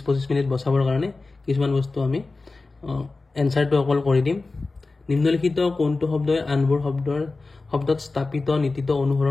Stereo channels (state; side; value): quieter; right; 3.6 dB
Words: মিনিট বচাবৰ কাৰণে কিছুমান বস্তু আমি आंसरটো অকল কৰি দিম নিম্নলিখিত কোনটো শব্দই আনবোৰ শব্দত স্থাপিত নীতিত